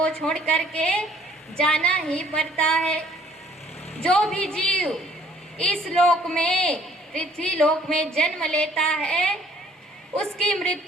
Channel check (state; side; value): normal; both; correlation 0.59